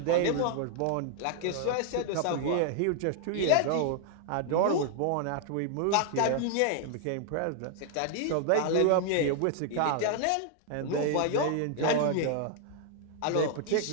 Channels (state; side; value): different; both; correlation 0.00